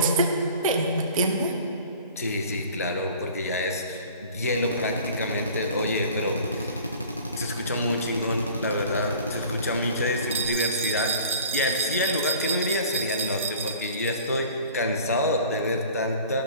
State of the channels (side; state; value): both; inverted; correlation -0.46